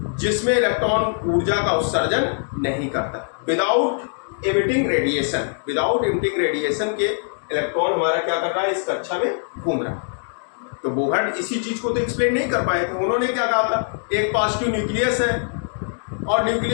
जिसमें इलेक्ट्रॉन ऊर्जा का उत्सर्जन नहीं करता, without emitting radiation. Without emitting radiation के इलेक्ट्रॉन हमारा क्या कर रहा है, इस कक्षा में घूम रहा है। तो बोहर इसी चीज को तो एक्सप्लेन नहीं कर पाए थे। उन्होंने क्या कहा था, एक पॉजिटिव न्यूक्लियस है और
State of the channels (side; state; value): right; silent; digital silence